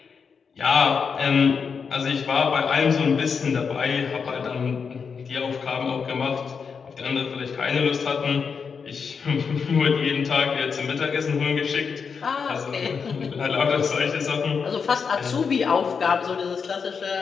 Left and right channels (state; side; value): quieter; right; 5.9 dB